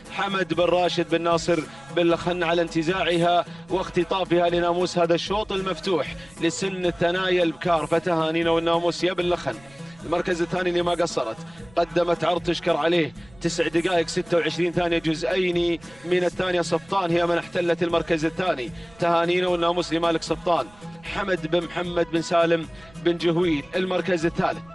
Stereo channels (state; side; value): noise; right; rumble, 26 dB below the sound